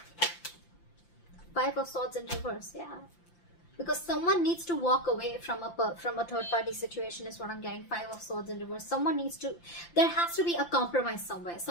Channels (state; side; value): late; right; 5.8 ms